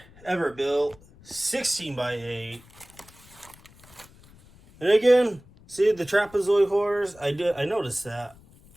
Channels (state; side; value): noise; left; rumble, 25 dB below the sound